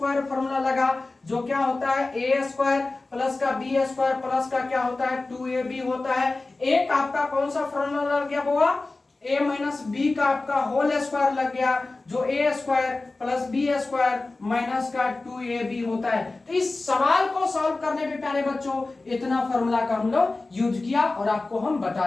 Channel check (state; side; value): quieter; right; 3.3 dB